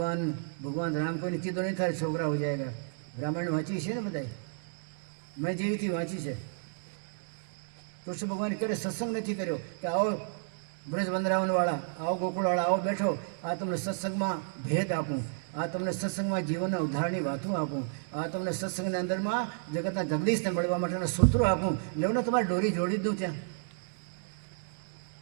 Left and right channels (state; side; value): silent; left; digital silence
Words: ભગવાન રામ કોઈને કીધો નહીં થાય છોકરા હો જાયગા. રામાયણ વાંચી છે ને બધાય, મેં જેવીથી વાંચી છે. કૃષ્ણ ભગવાને ક્યારે સત્સંગ નથી કર્યો કે આવો બ્રજ વંદરાવનવાળા, આવો ગોકુળવાળા, આવો બેઠો, આ તમને સત્સંગમાં ભેદ આપું, આ તમને સત્સંગમાં જીવનના ઉદ્ધારની વાતો આપું, આ તમને સત્સંગના અંદરમાં જગતના જગદીશને મળવા માટેના સૂત્રો આપું. લેવને તમારે દોરી જોડી દઉં ત્યાં.